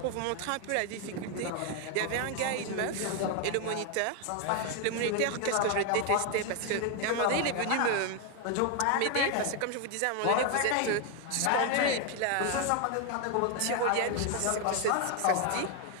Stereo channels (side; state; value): both; different; correlation 0.01